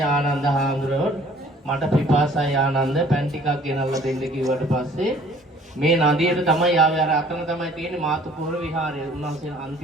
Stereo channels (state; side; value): normal; both; correlation 0.54